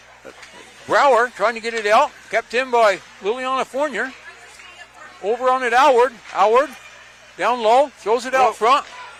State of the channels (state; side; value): identical; both; correlation 1.00